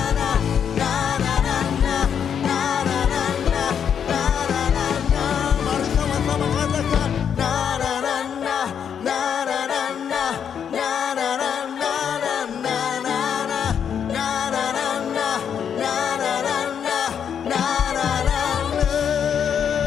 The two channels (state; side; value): quieter; right; 8.0 dB